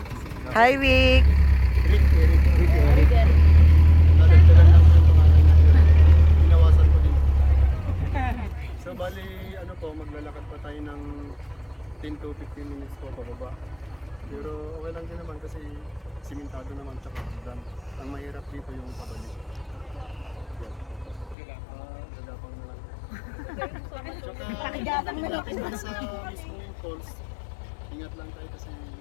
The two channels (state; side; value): drops out; right; at 21.4 s